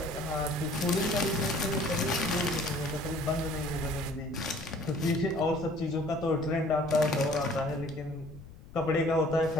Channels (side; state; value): left; noise; rumble, 18 dB below the sound